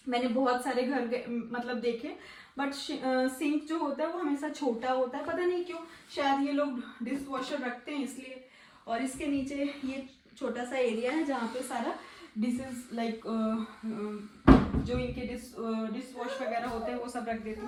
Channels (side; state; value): both; identical; correlation 1.00